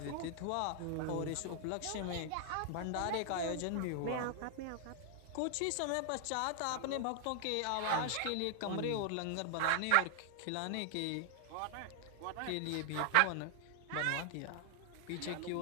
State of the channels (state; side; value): different; both; correlation 0.00